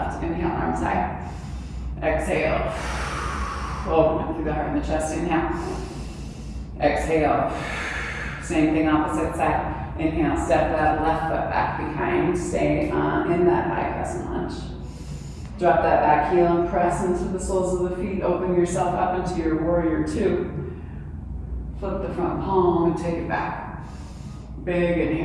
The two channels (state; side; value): identical; both; correlation 1.00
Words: Inhale, arms high. Exhale. Open up through the heart and the chest. Inhale. Exhale. Same thing, opposite side. Inhale, step that left foot back behind. Stay in that high crescent lunge. Drop that back heel and press into the soles of the feet. Open yourself up into your warrior 2. Flip the front palm and take it back. Big